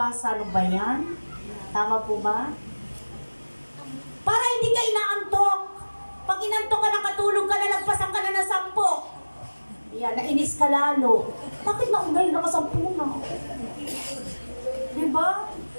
Ano ba yan? Tama po ba? Para hindi ka inaantok. Pag inantok ka, nakatulog ka na, nagpasan ka na ng 10. Yan, nainis ka lalo. Bakit naunay naka 10 na? Diba?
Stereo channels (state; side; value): inverted; both; correlation -1.00